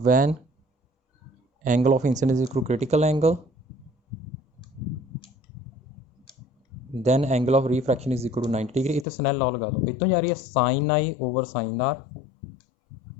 When angle of incidence equal critical angle, then angle of refraction is equal to 90 degree. इतने स्नैल लॉ लगा दो, इतों जा रही है sine i over sine r,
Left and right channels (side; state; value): right; drops out; at 9.1 s